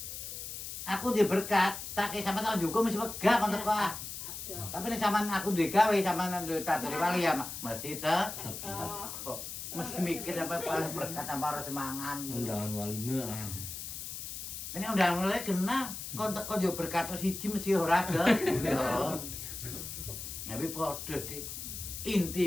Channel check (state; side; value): noise; left; hiss, 8 dB below the sound